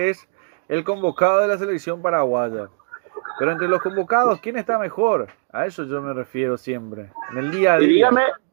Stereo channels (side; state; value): left; silent; digital silence